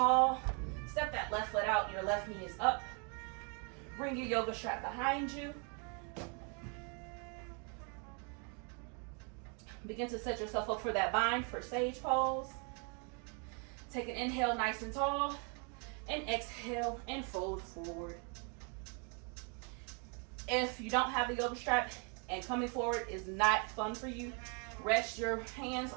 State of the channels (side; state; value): left; quieter; 37.0 dB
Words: Step that left foot out, your left knee is up. Bring your yoga strap behind you. Begin to set yourself up for that bind for sage pose. Take an inhale nice and tall, and exhale and fold forward. If you don't have a yoga strap and coming forward is not fun for you, rest your hands